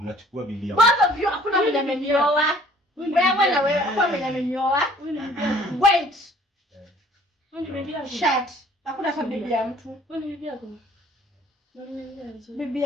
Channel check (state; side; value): normal; both; correlation 0.55